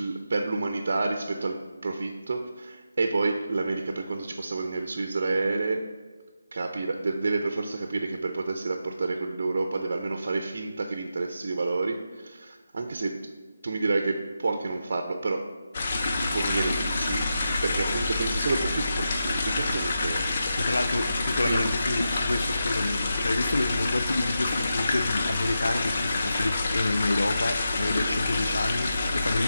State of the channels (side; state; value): both; inverted; correlation -0.87